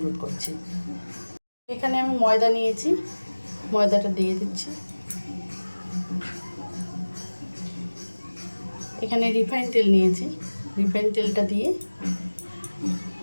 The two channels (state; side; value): inverted; both; correlation -1.00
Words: করছি। এখানে আমি ময়দা নিয়েছি, ময়দাটা দিয়ে দিচ্ছি। এখানে রিফাইন তেল নিয়েছি, রিফাইন তেলটা দিয়ে